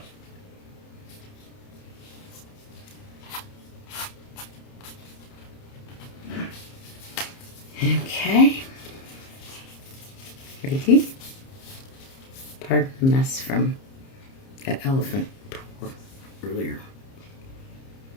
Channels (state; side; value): late; right; 30 ms